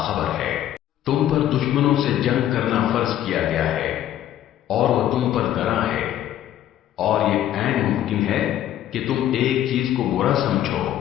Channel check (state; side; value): quieter; right; 11.9 dB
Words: ہے۔ تم پر دشمنوں سے جنگ کرنا فرض کیا گیا ہے اور وہ تم پر گراں ہے، اور یہ عین ممکن ہے کہ تم ایک چیز کو برا سمجھو